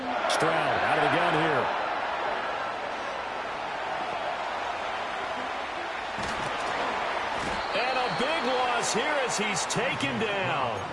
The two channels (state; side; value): identical; both; correlation 1.00